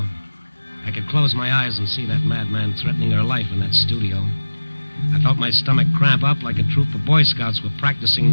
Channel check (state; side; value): inverted; both; correlation -1.00